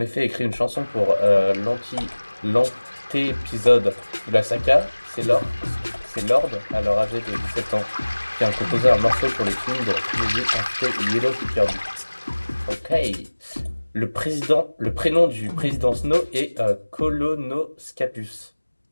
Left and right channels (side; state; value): both; inverted; correlation -1.00